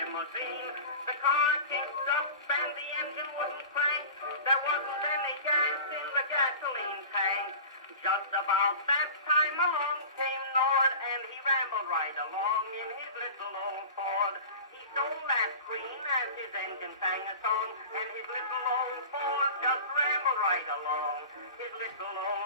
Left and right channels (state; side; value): inverted; both; correlation -0.36